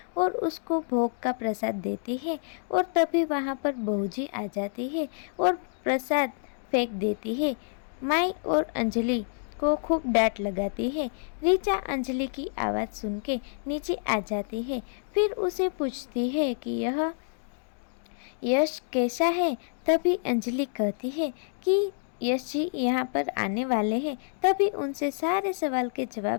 और उसको भोग का प्रसाद देती है और तभी वहाँ पर बहूजी आ जाती है और प्रसाद फेंक देती है। माई और अंजलि को खूब डांट लगाती है। ऋचा अंजलि की आवाज़ सुन के नीचे आ जाती है, फिर उसे पूछती है कि यह यश कैसा है। तभी अंजलि कहती है कि यश जी यहाँ पर आने वाले हैं, तभी उनसे सारे सवाल के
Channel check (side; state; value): right; silent; digital silence